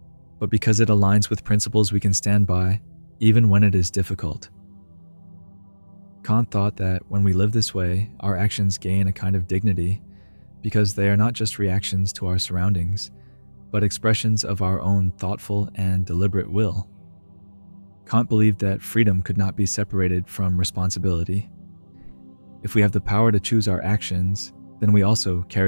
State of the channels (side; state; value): both; inverted; correlation -1.00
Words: but because it aligns with principles we can stand by, even when it is difficult. Kant thought that when we live this way, our actions gain a kind of dignity, because they are not just reactions to our surroundings, but expressions of our own thoughtful and deliberate will. Kant believed that freedom could not be separated from responsibility. If we have the power to choose our actions, then we also